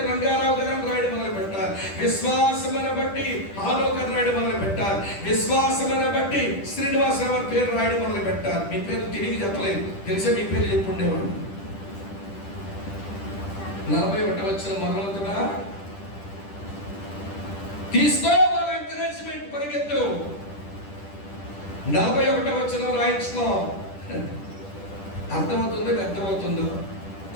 రంగారావు గారు అని రాయడం మొదలు పెట్టాలి. విశ్వాసమును బట్టి హానోకు అని రాయడం మొదలు పెట్టాలి. విశ్వాసమును బట్టి శ్రీనివాసరావు అని పేరు రాయడం మొదలు పెట్టాలి. మీ పేరు తిరిగి చెప్పలేదు, తెలిసే మీ పేరు చెప్పుండేవాడు. 41వ వచనం మొదలవుతుందా? తీసుకో వాళ్ళ ఎంకరేజ్మెంట్, పరిగెత్తు. 41వ వచనం రాయించుకో. అర్థమవుతుందో అర్థమవుతుందో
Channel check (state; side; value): late; right; 10 ms